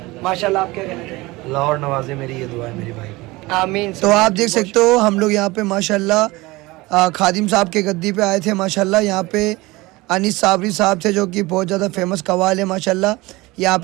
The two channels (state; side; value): quieter; left; 21.4 dB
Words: माशाल्लाह आप क्या कहते हैं? लाहौर नवाजे मेरी ये दुआ है मेरे भाई। आमीन। तो आप देख सकते हो हम लोग यहाँ पे माशाल्लाह खादिम साहब के गद्दी पे आए थे। माशाल्लाह यहाँ पे अनीस साबरी साहब थे जो कि बहुत ज़्यादा फेमस कवाल है माशाल्लाह। यहाँ